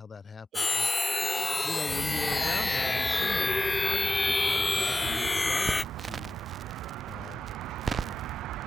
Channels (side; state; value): both; normal; correlation 0.91